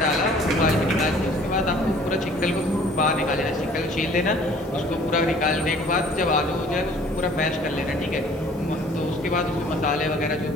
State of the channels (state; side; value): normal; both; correlation 0.53